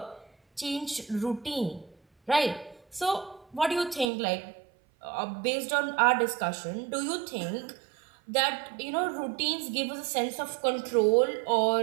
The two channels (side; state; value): left; drops out; at 4.1 s